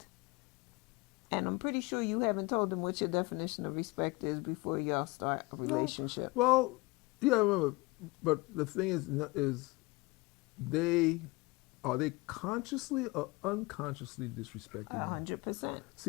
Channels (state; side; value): quieter; right; 24.2 dB